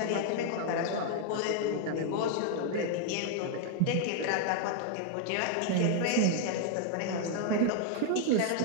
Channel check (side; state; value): both; different; correlation 0.00